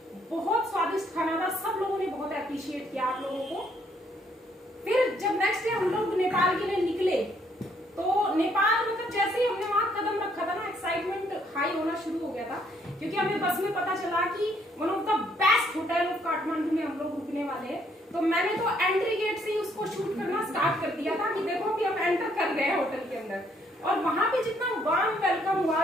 बहुत स्वादिष्ट खाना था, सब लोगों ने बहुत अप्रिशिएट किया आप लोगों को। फिर जब नेक्स्ट डे हम लोग नेपाल के लिए निकले, तो नेपाल मतलब जैसे ही हमने वहां कदम रखा था ना, एक्साइटमेंट हाई होना शुरू हो गया था, क्योंकि हमें बस में पता चला कि one of the best hotel of Kathmandu में हम लोग रुकने वाले हैं। तो मैंने तो एंट्री गेट से ही उसको शूट करना स्टार्ट कर दिया था कि देखो कि हम एंटर कर गए हैं होटल के अंदर। और वहां पे जितना वार्म वेलकम हुआ,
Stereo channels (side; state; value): both; normal; correlation 0.69